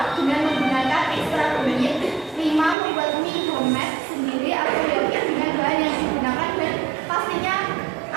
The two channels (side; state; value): left; drops out; at 2.8 s